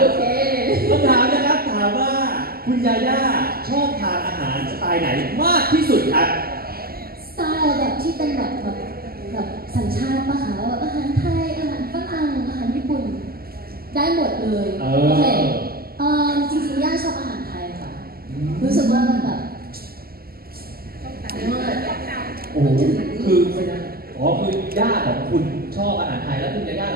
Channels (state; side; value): late; left; 0.44 ms